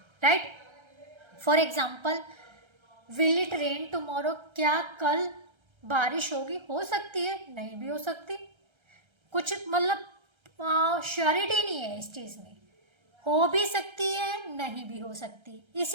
right. For example, will it rain tomorrow, क्या कल बारिश होगी? हो सकती है, नहीं भी हो सकती, कुछ मतलब श्योरिटी नहीं है इस चीज़ में, हो भी सकती है नहीं भी हो सकती।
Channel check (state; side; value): late; left; 1.3 ms